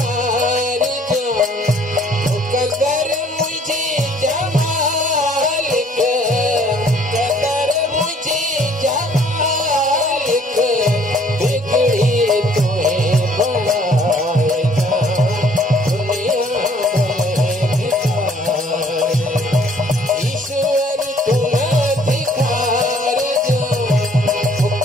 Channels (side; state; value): both; normal; correlation 0.59